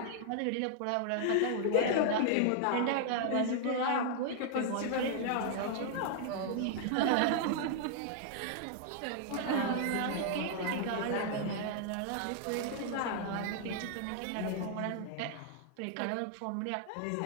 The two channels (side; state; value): both; different; correlation -0.01